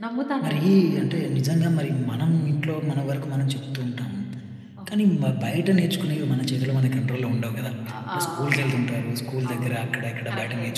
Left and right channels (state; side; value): identical; both; correlation 1.00